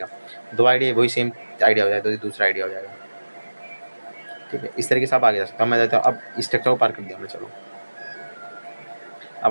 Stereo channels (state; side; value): inverted; both; correlation -1.00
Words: 2 आइडिया वही सेम आइडिया हो जाएगा, तो दूसरा आइडिया हो जाएगा। ठीक है, इस तरीके से आप आगे जा सकते हो। मैं जाता हूँ, अब स्ट्रक्चर को पार कर दिया हमने। चलो